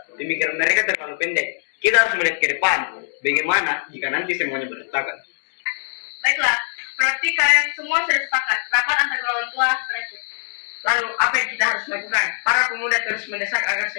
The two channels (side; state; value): right; silent; digital silence